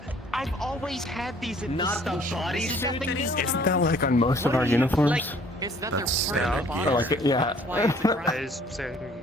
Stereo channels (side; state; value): both; normal; correlation 0.57